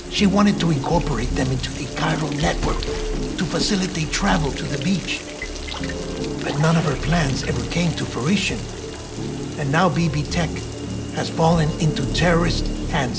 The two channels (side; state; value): both; identical; correlation 1.00